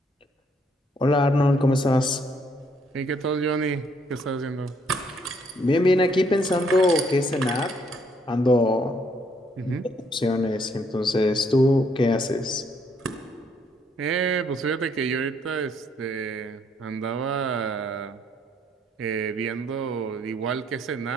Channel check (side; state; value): both; normal; correlation 0.69